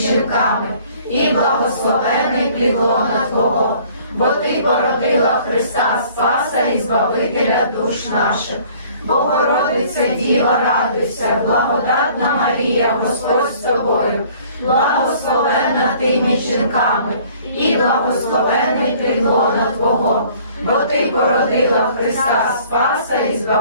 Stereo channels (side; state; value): both; inverted; correlation -0.55